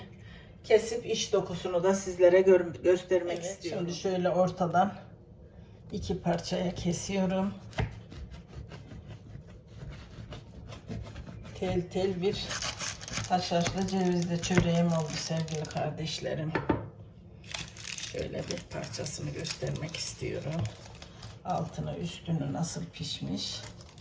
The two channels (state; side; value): identical; both; correlation 1.00